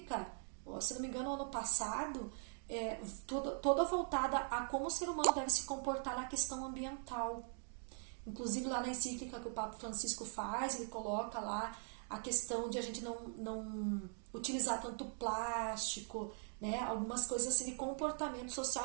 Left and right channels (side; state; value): left; silent; 50 dB below the other